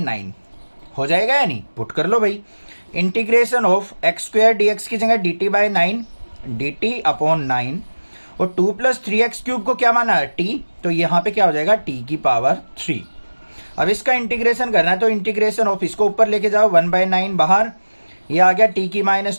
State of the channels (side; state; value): both; inverted; correlation -1.00